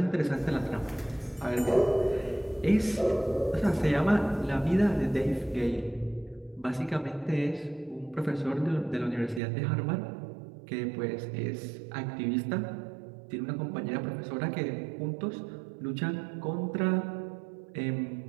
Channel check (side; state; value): left; drops out; at 9.4 s